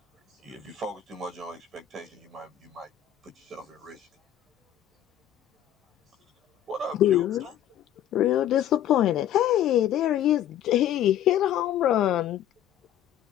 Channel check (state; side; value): quieter; right; 11.2 dB